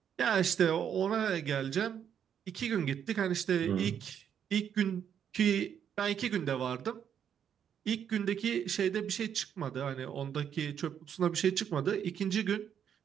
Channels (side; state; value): left; quieter; 8.6 dB